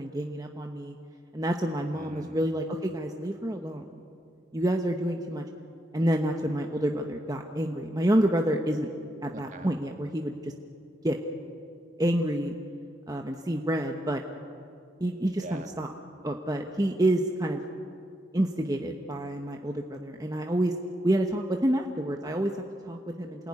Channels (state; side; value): normal; both; correlation 0.80